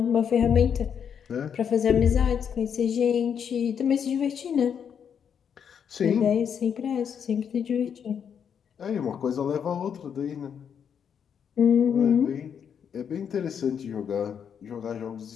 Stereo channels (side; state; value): right; quieter; 7.7 dB